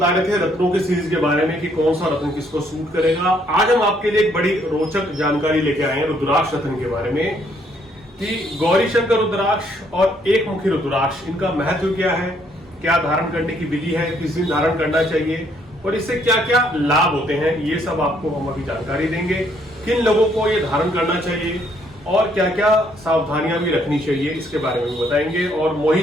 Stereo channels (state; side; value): normal; both; correlation 0.68